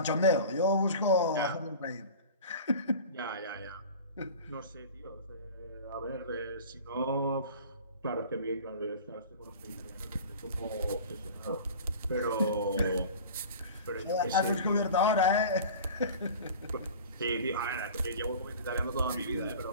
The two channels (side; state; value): both; inverted; correlation -0.39